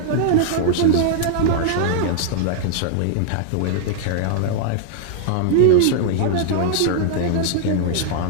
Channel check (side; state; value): both; different; correlation -0.01